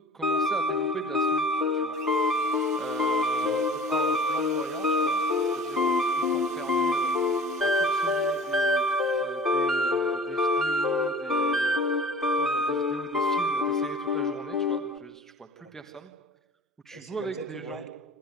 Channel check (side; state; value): both; normal; correlation 0.43